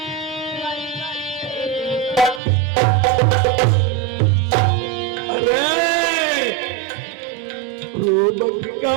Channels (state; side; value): drops out; left; at 2.4 s